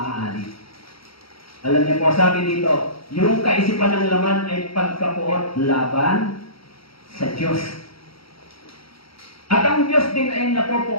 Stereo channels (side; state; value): right; late; 0.75 ms